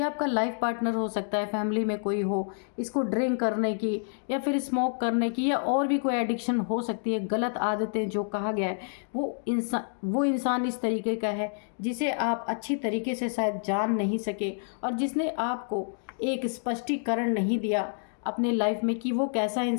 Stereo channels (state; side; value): silent; right; digital silence